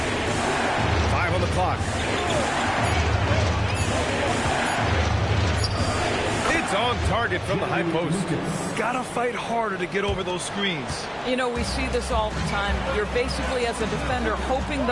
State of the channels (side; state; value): both; identical; correlation 1.00